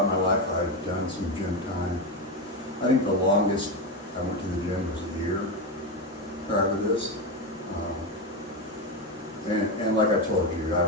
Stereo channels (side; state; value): both; normal; correlation 0.13